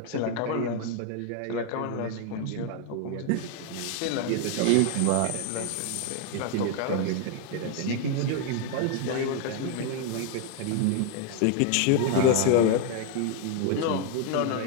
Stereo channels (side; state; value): both; different; correlation 0.01